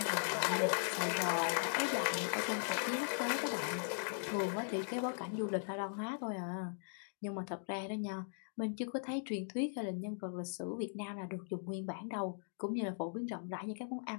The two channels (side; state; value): right; silent; digital silence